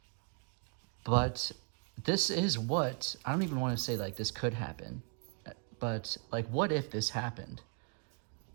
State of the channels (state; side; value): quieter; left; 36.5 dB